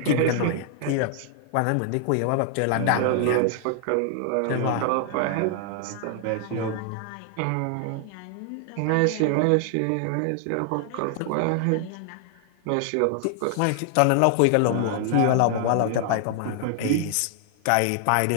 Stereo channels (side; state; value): both; different; correlation 0.00